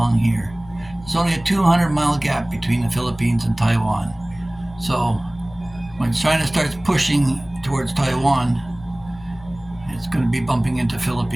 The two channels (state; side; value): noise; left; hum, 20 dB below the sound